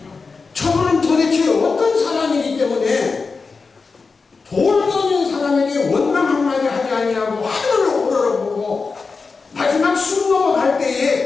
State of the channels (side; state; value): right; quieter; 4.5 dB